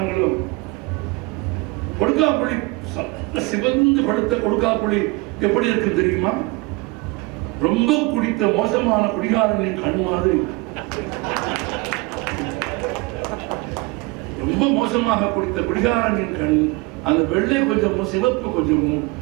கொடுக்காப்புளி சிவந்து படுத்த கொடுக்காப்புளி எப்படி இருக்கு தெரியுமா? ரொம்ப குடித்த மோசமான குடிகாரனின் கண் மாதிரி. ரொம்ப மோசமாக குடித்த குடிகாரனின் கண், அந்த வெள்ளை கொஞ்சமும் சிவப்பு கொஞ்சமும்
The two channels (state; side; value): quieter; left; 24.1 dB